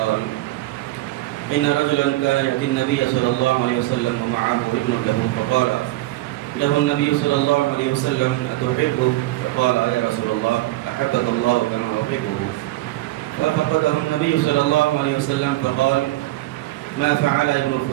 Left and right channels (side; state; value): left; quieter; 17.7 dB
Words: إن رجلا كان يأتي النبي صلى الله عليه وسلم ومعه ابن له، فقال له النبي صلى الله عليه وسلم: أتحبه؟ فقال: يا رسول الله، أحبك الله كما أحبه. ففقده النبي صلى الله عليه وسلم فقال: ما فعل ابن